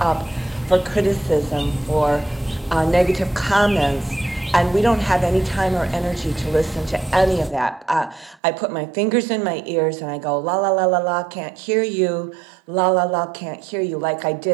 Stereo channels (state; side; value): drops out; left; at 8.4 s